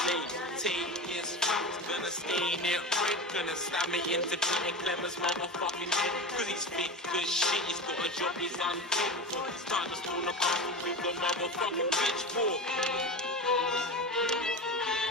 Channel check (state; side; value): normal; both; correlation 0.26